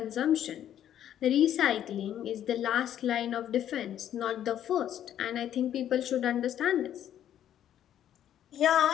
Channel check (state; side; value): quieter; right; 10.7 dB